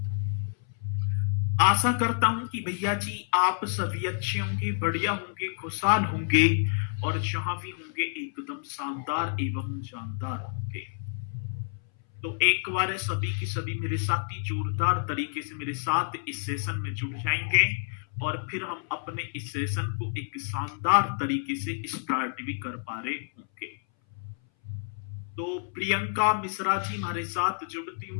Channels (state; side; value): silent; right; 58 dB below the other